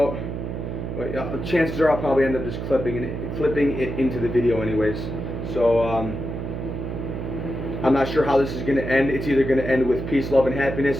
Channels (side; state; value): right; noise; hum, 5 dB below the sound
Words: but chances are I'll probably end up just clipping it into the video anyways. So, I'm not sure how this is going to end. It's either going to end with peace, love, and